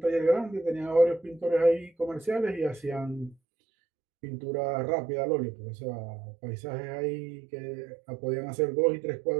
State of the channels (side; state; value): left; drops out; at 3.4 s